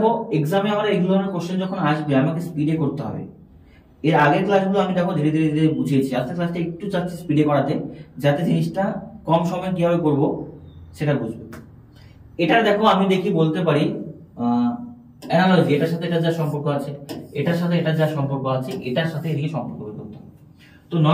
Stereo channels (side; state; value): both; identical; correlation 1.00